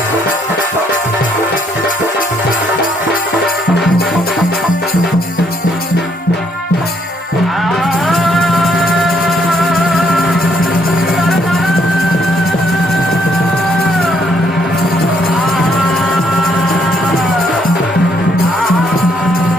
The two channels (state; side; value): normal; both; correlation 0.70